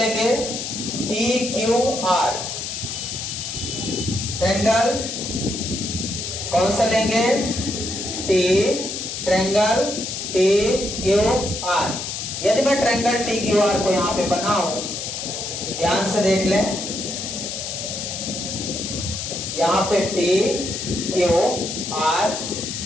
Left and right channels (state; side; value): noise; left; hiss, 5 dB below the sound